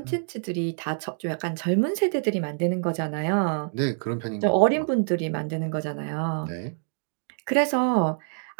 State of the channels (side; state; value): left; silent; 61 dB below the other